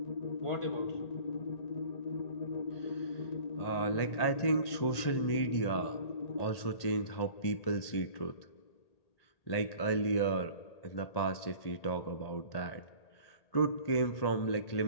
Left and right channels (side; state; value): right; late; 1.8 ms